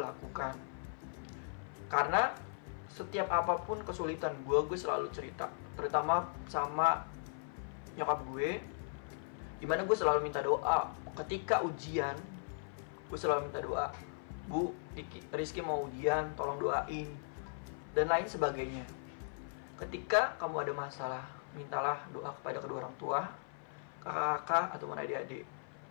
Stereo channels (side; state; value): right; silent; 53 dB below the other